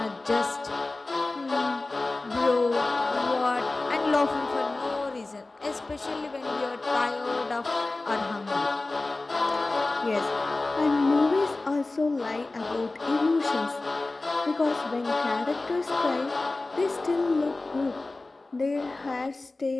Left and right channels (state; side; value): quieter; right; 3.2 dB